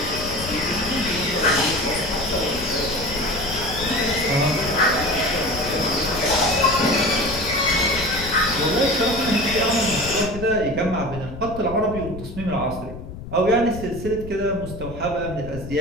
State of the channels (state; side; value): noise; left; rumble, 11 dB below the sound